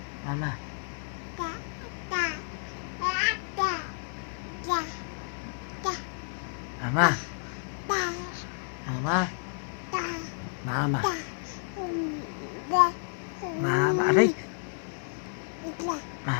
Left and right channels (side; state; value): right; silent; 57 dB below the other